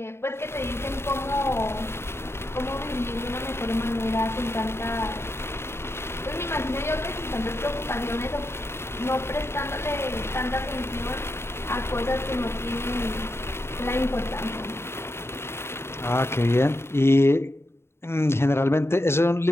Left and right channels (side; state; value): right; late; 0.12 ms